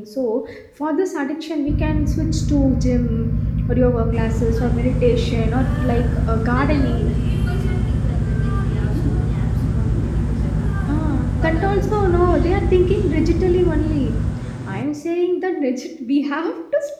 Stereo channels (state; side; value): identical; both; correlation 1.00